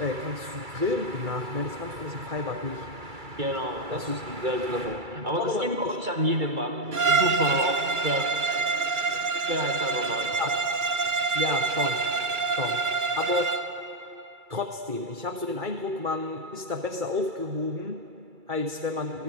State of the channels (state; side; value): late; left; 2.3 ms